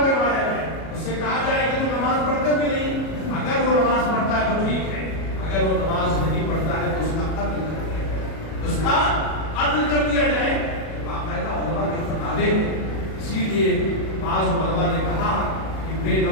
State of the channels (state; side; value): late; right; 37 ms